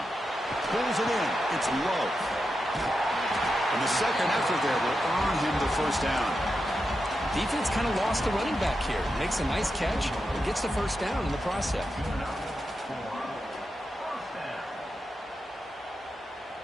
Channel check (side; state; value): both; normal; correlation 0.88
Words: Pulls it in. It's low. And the second effort there will earn him the 1st down. Defense kind of lost the running back here. Makes a nice catch and gets the 1st down in the process.